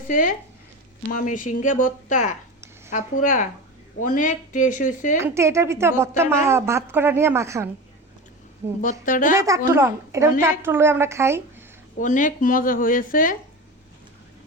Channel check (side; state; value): both; normal; correlation 0.27